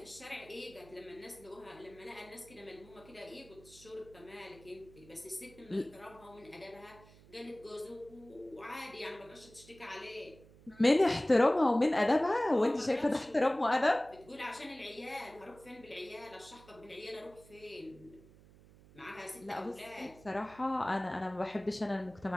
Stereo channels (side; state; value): right; noise; hum, 23 dB below the sound